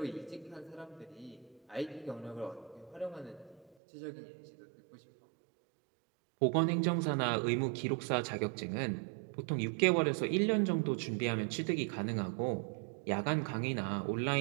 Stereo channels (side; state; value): left; drops out; at 3.8 s